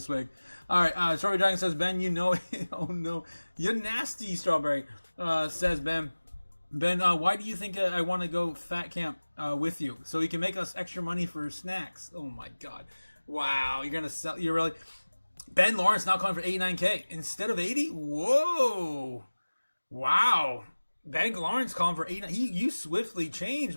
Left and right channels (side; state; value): both; inverted; correlation -1.00